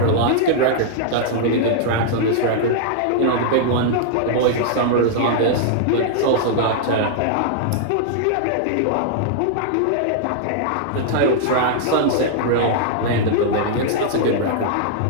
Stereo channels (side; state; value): both; different; correlation -0.01